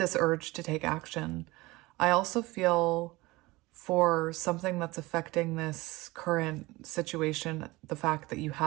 urge to take action. I also feel for something that's affecting this current situation, the fact that you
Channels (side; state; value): left; quieter; 21.2 dB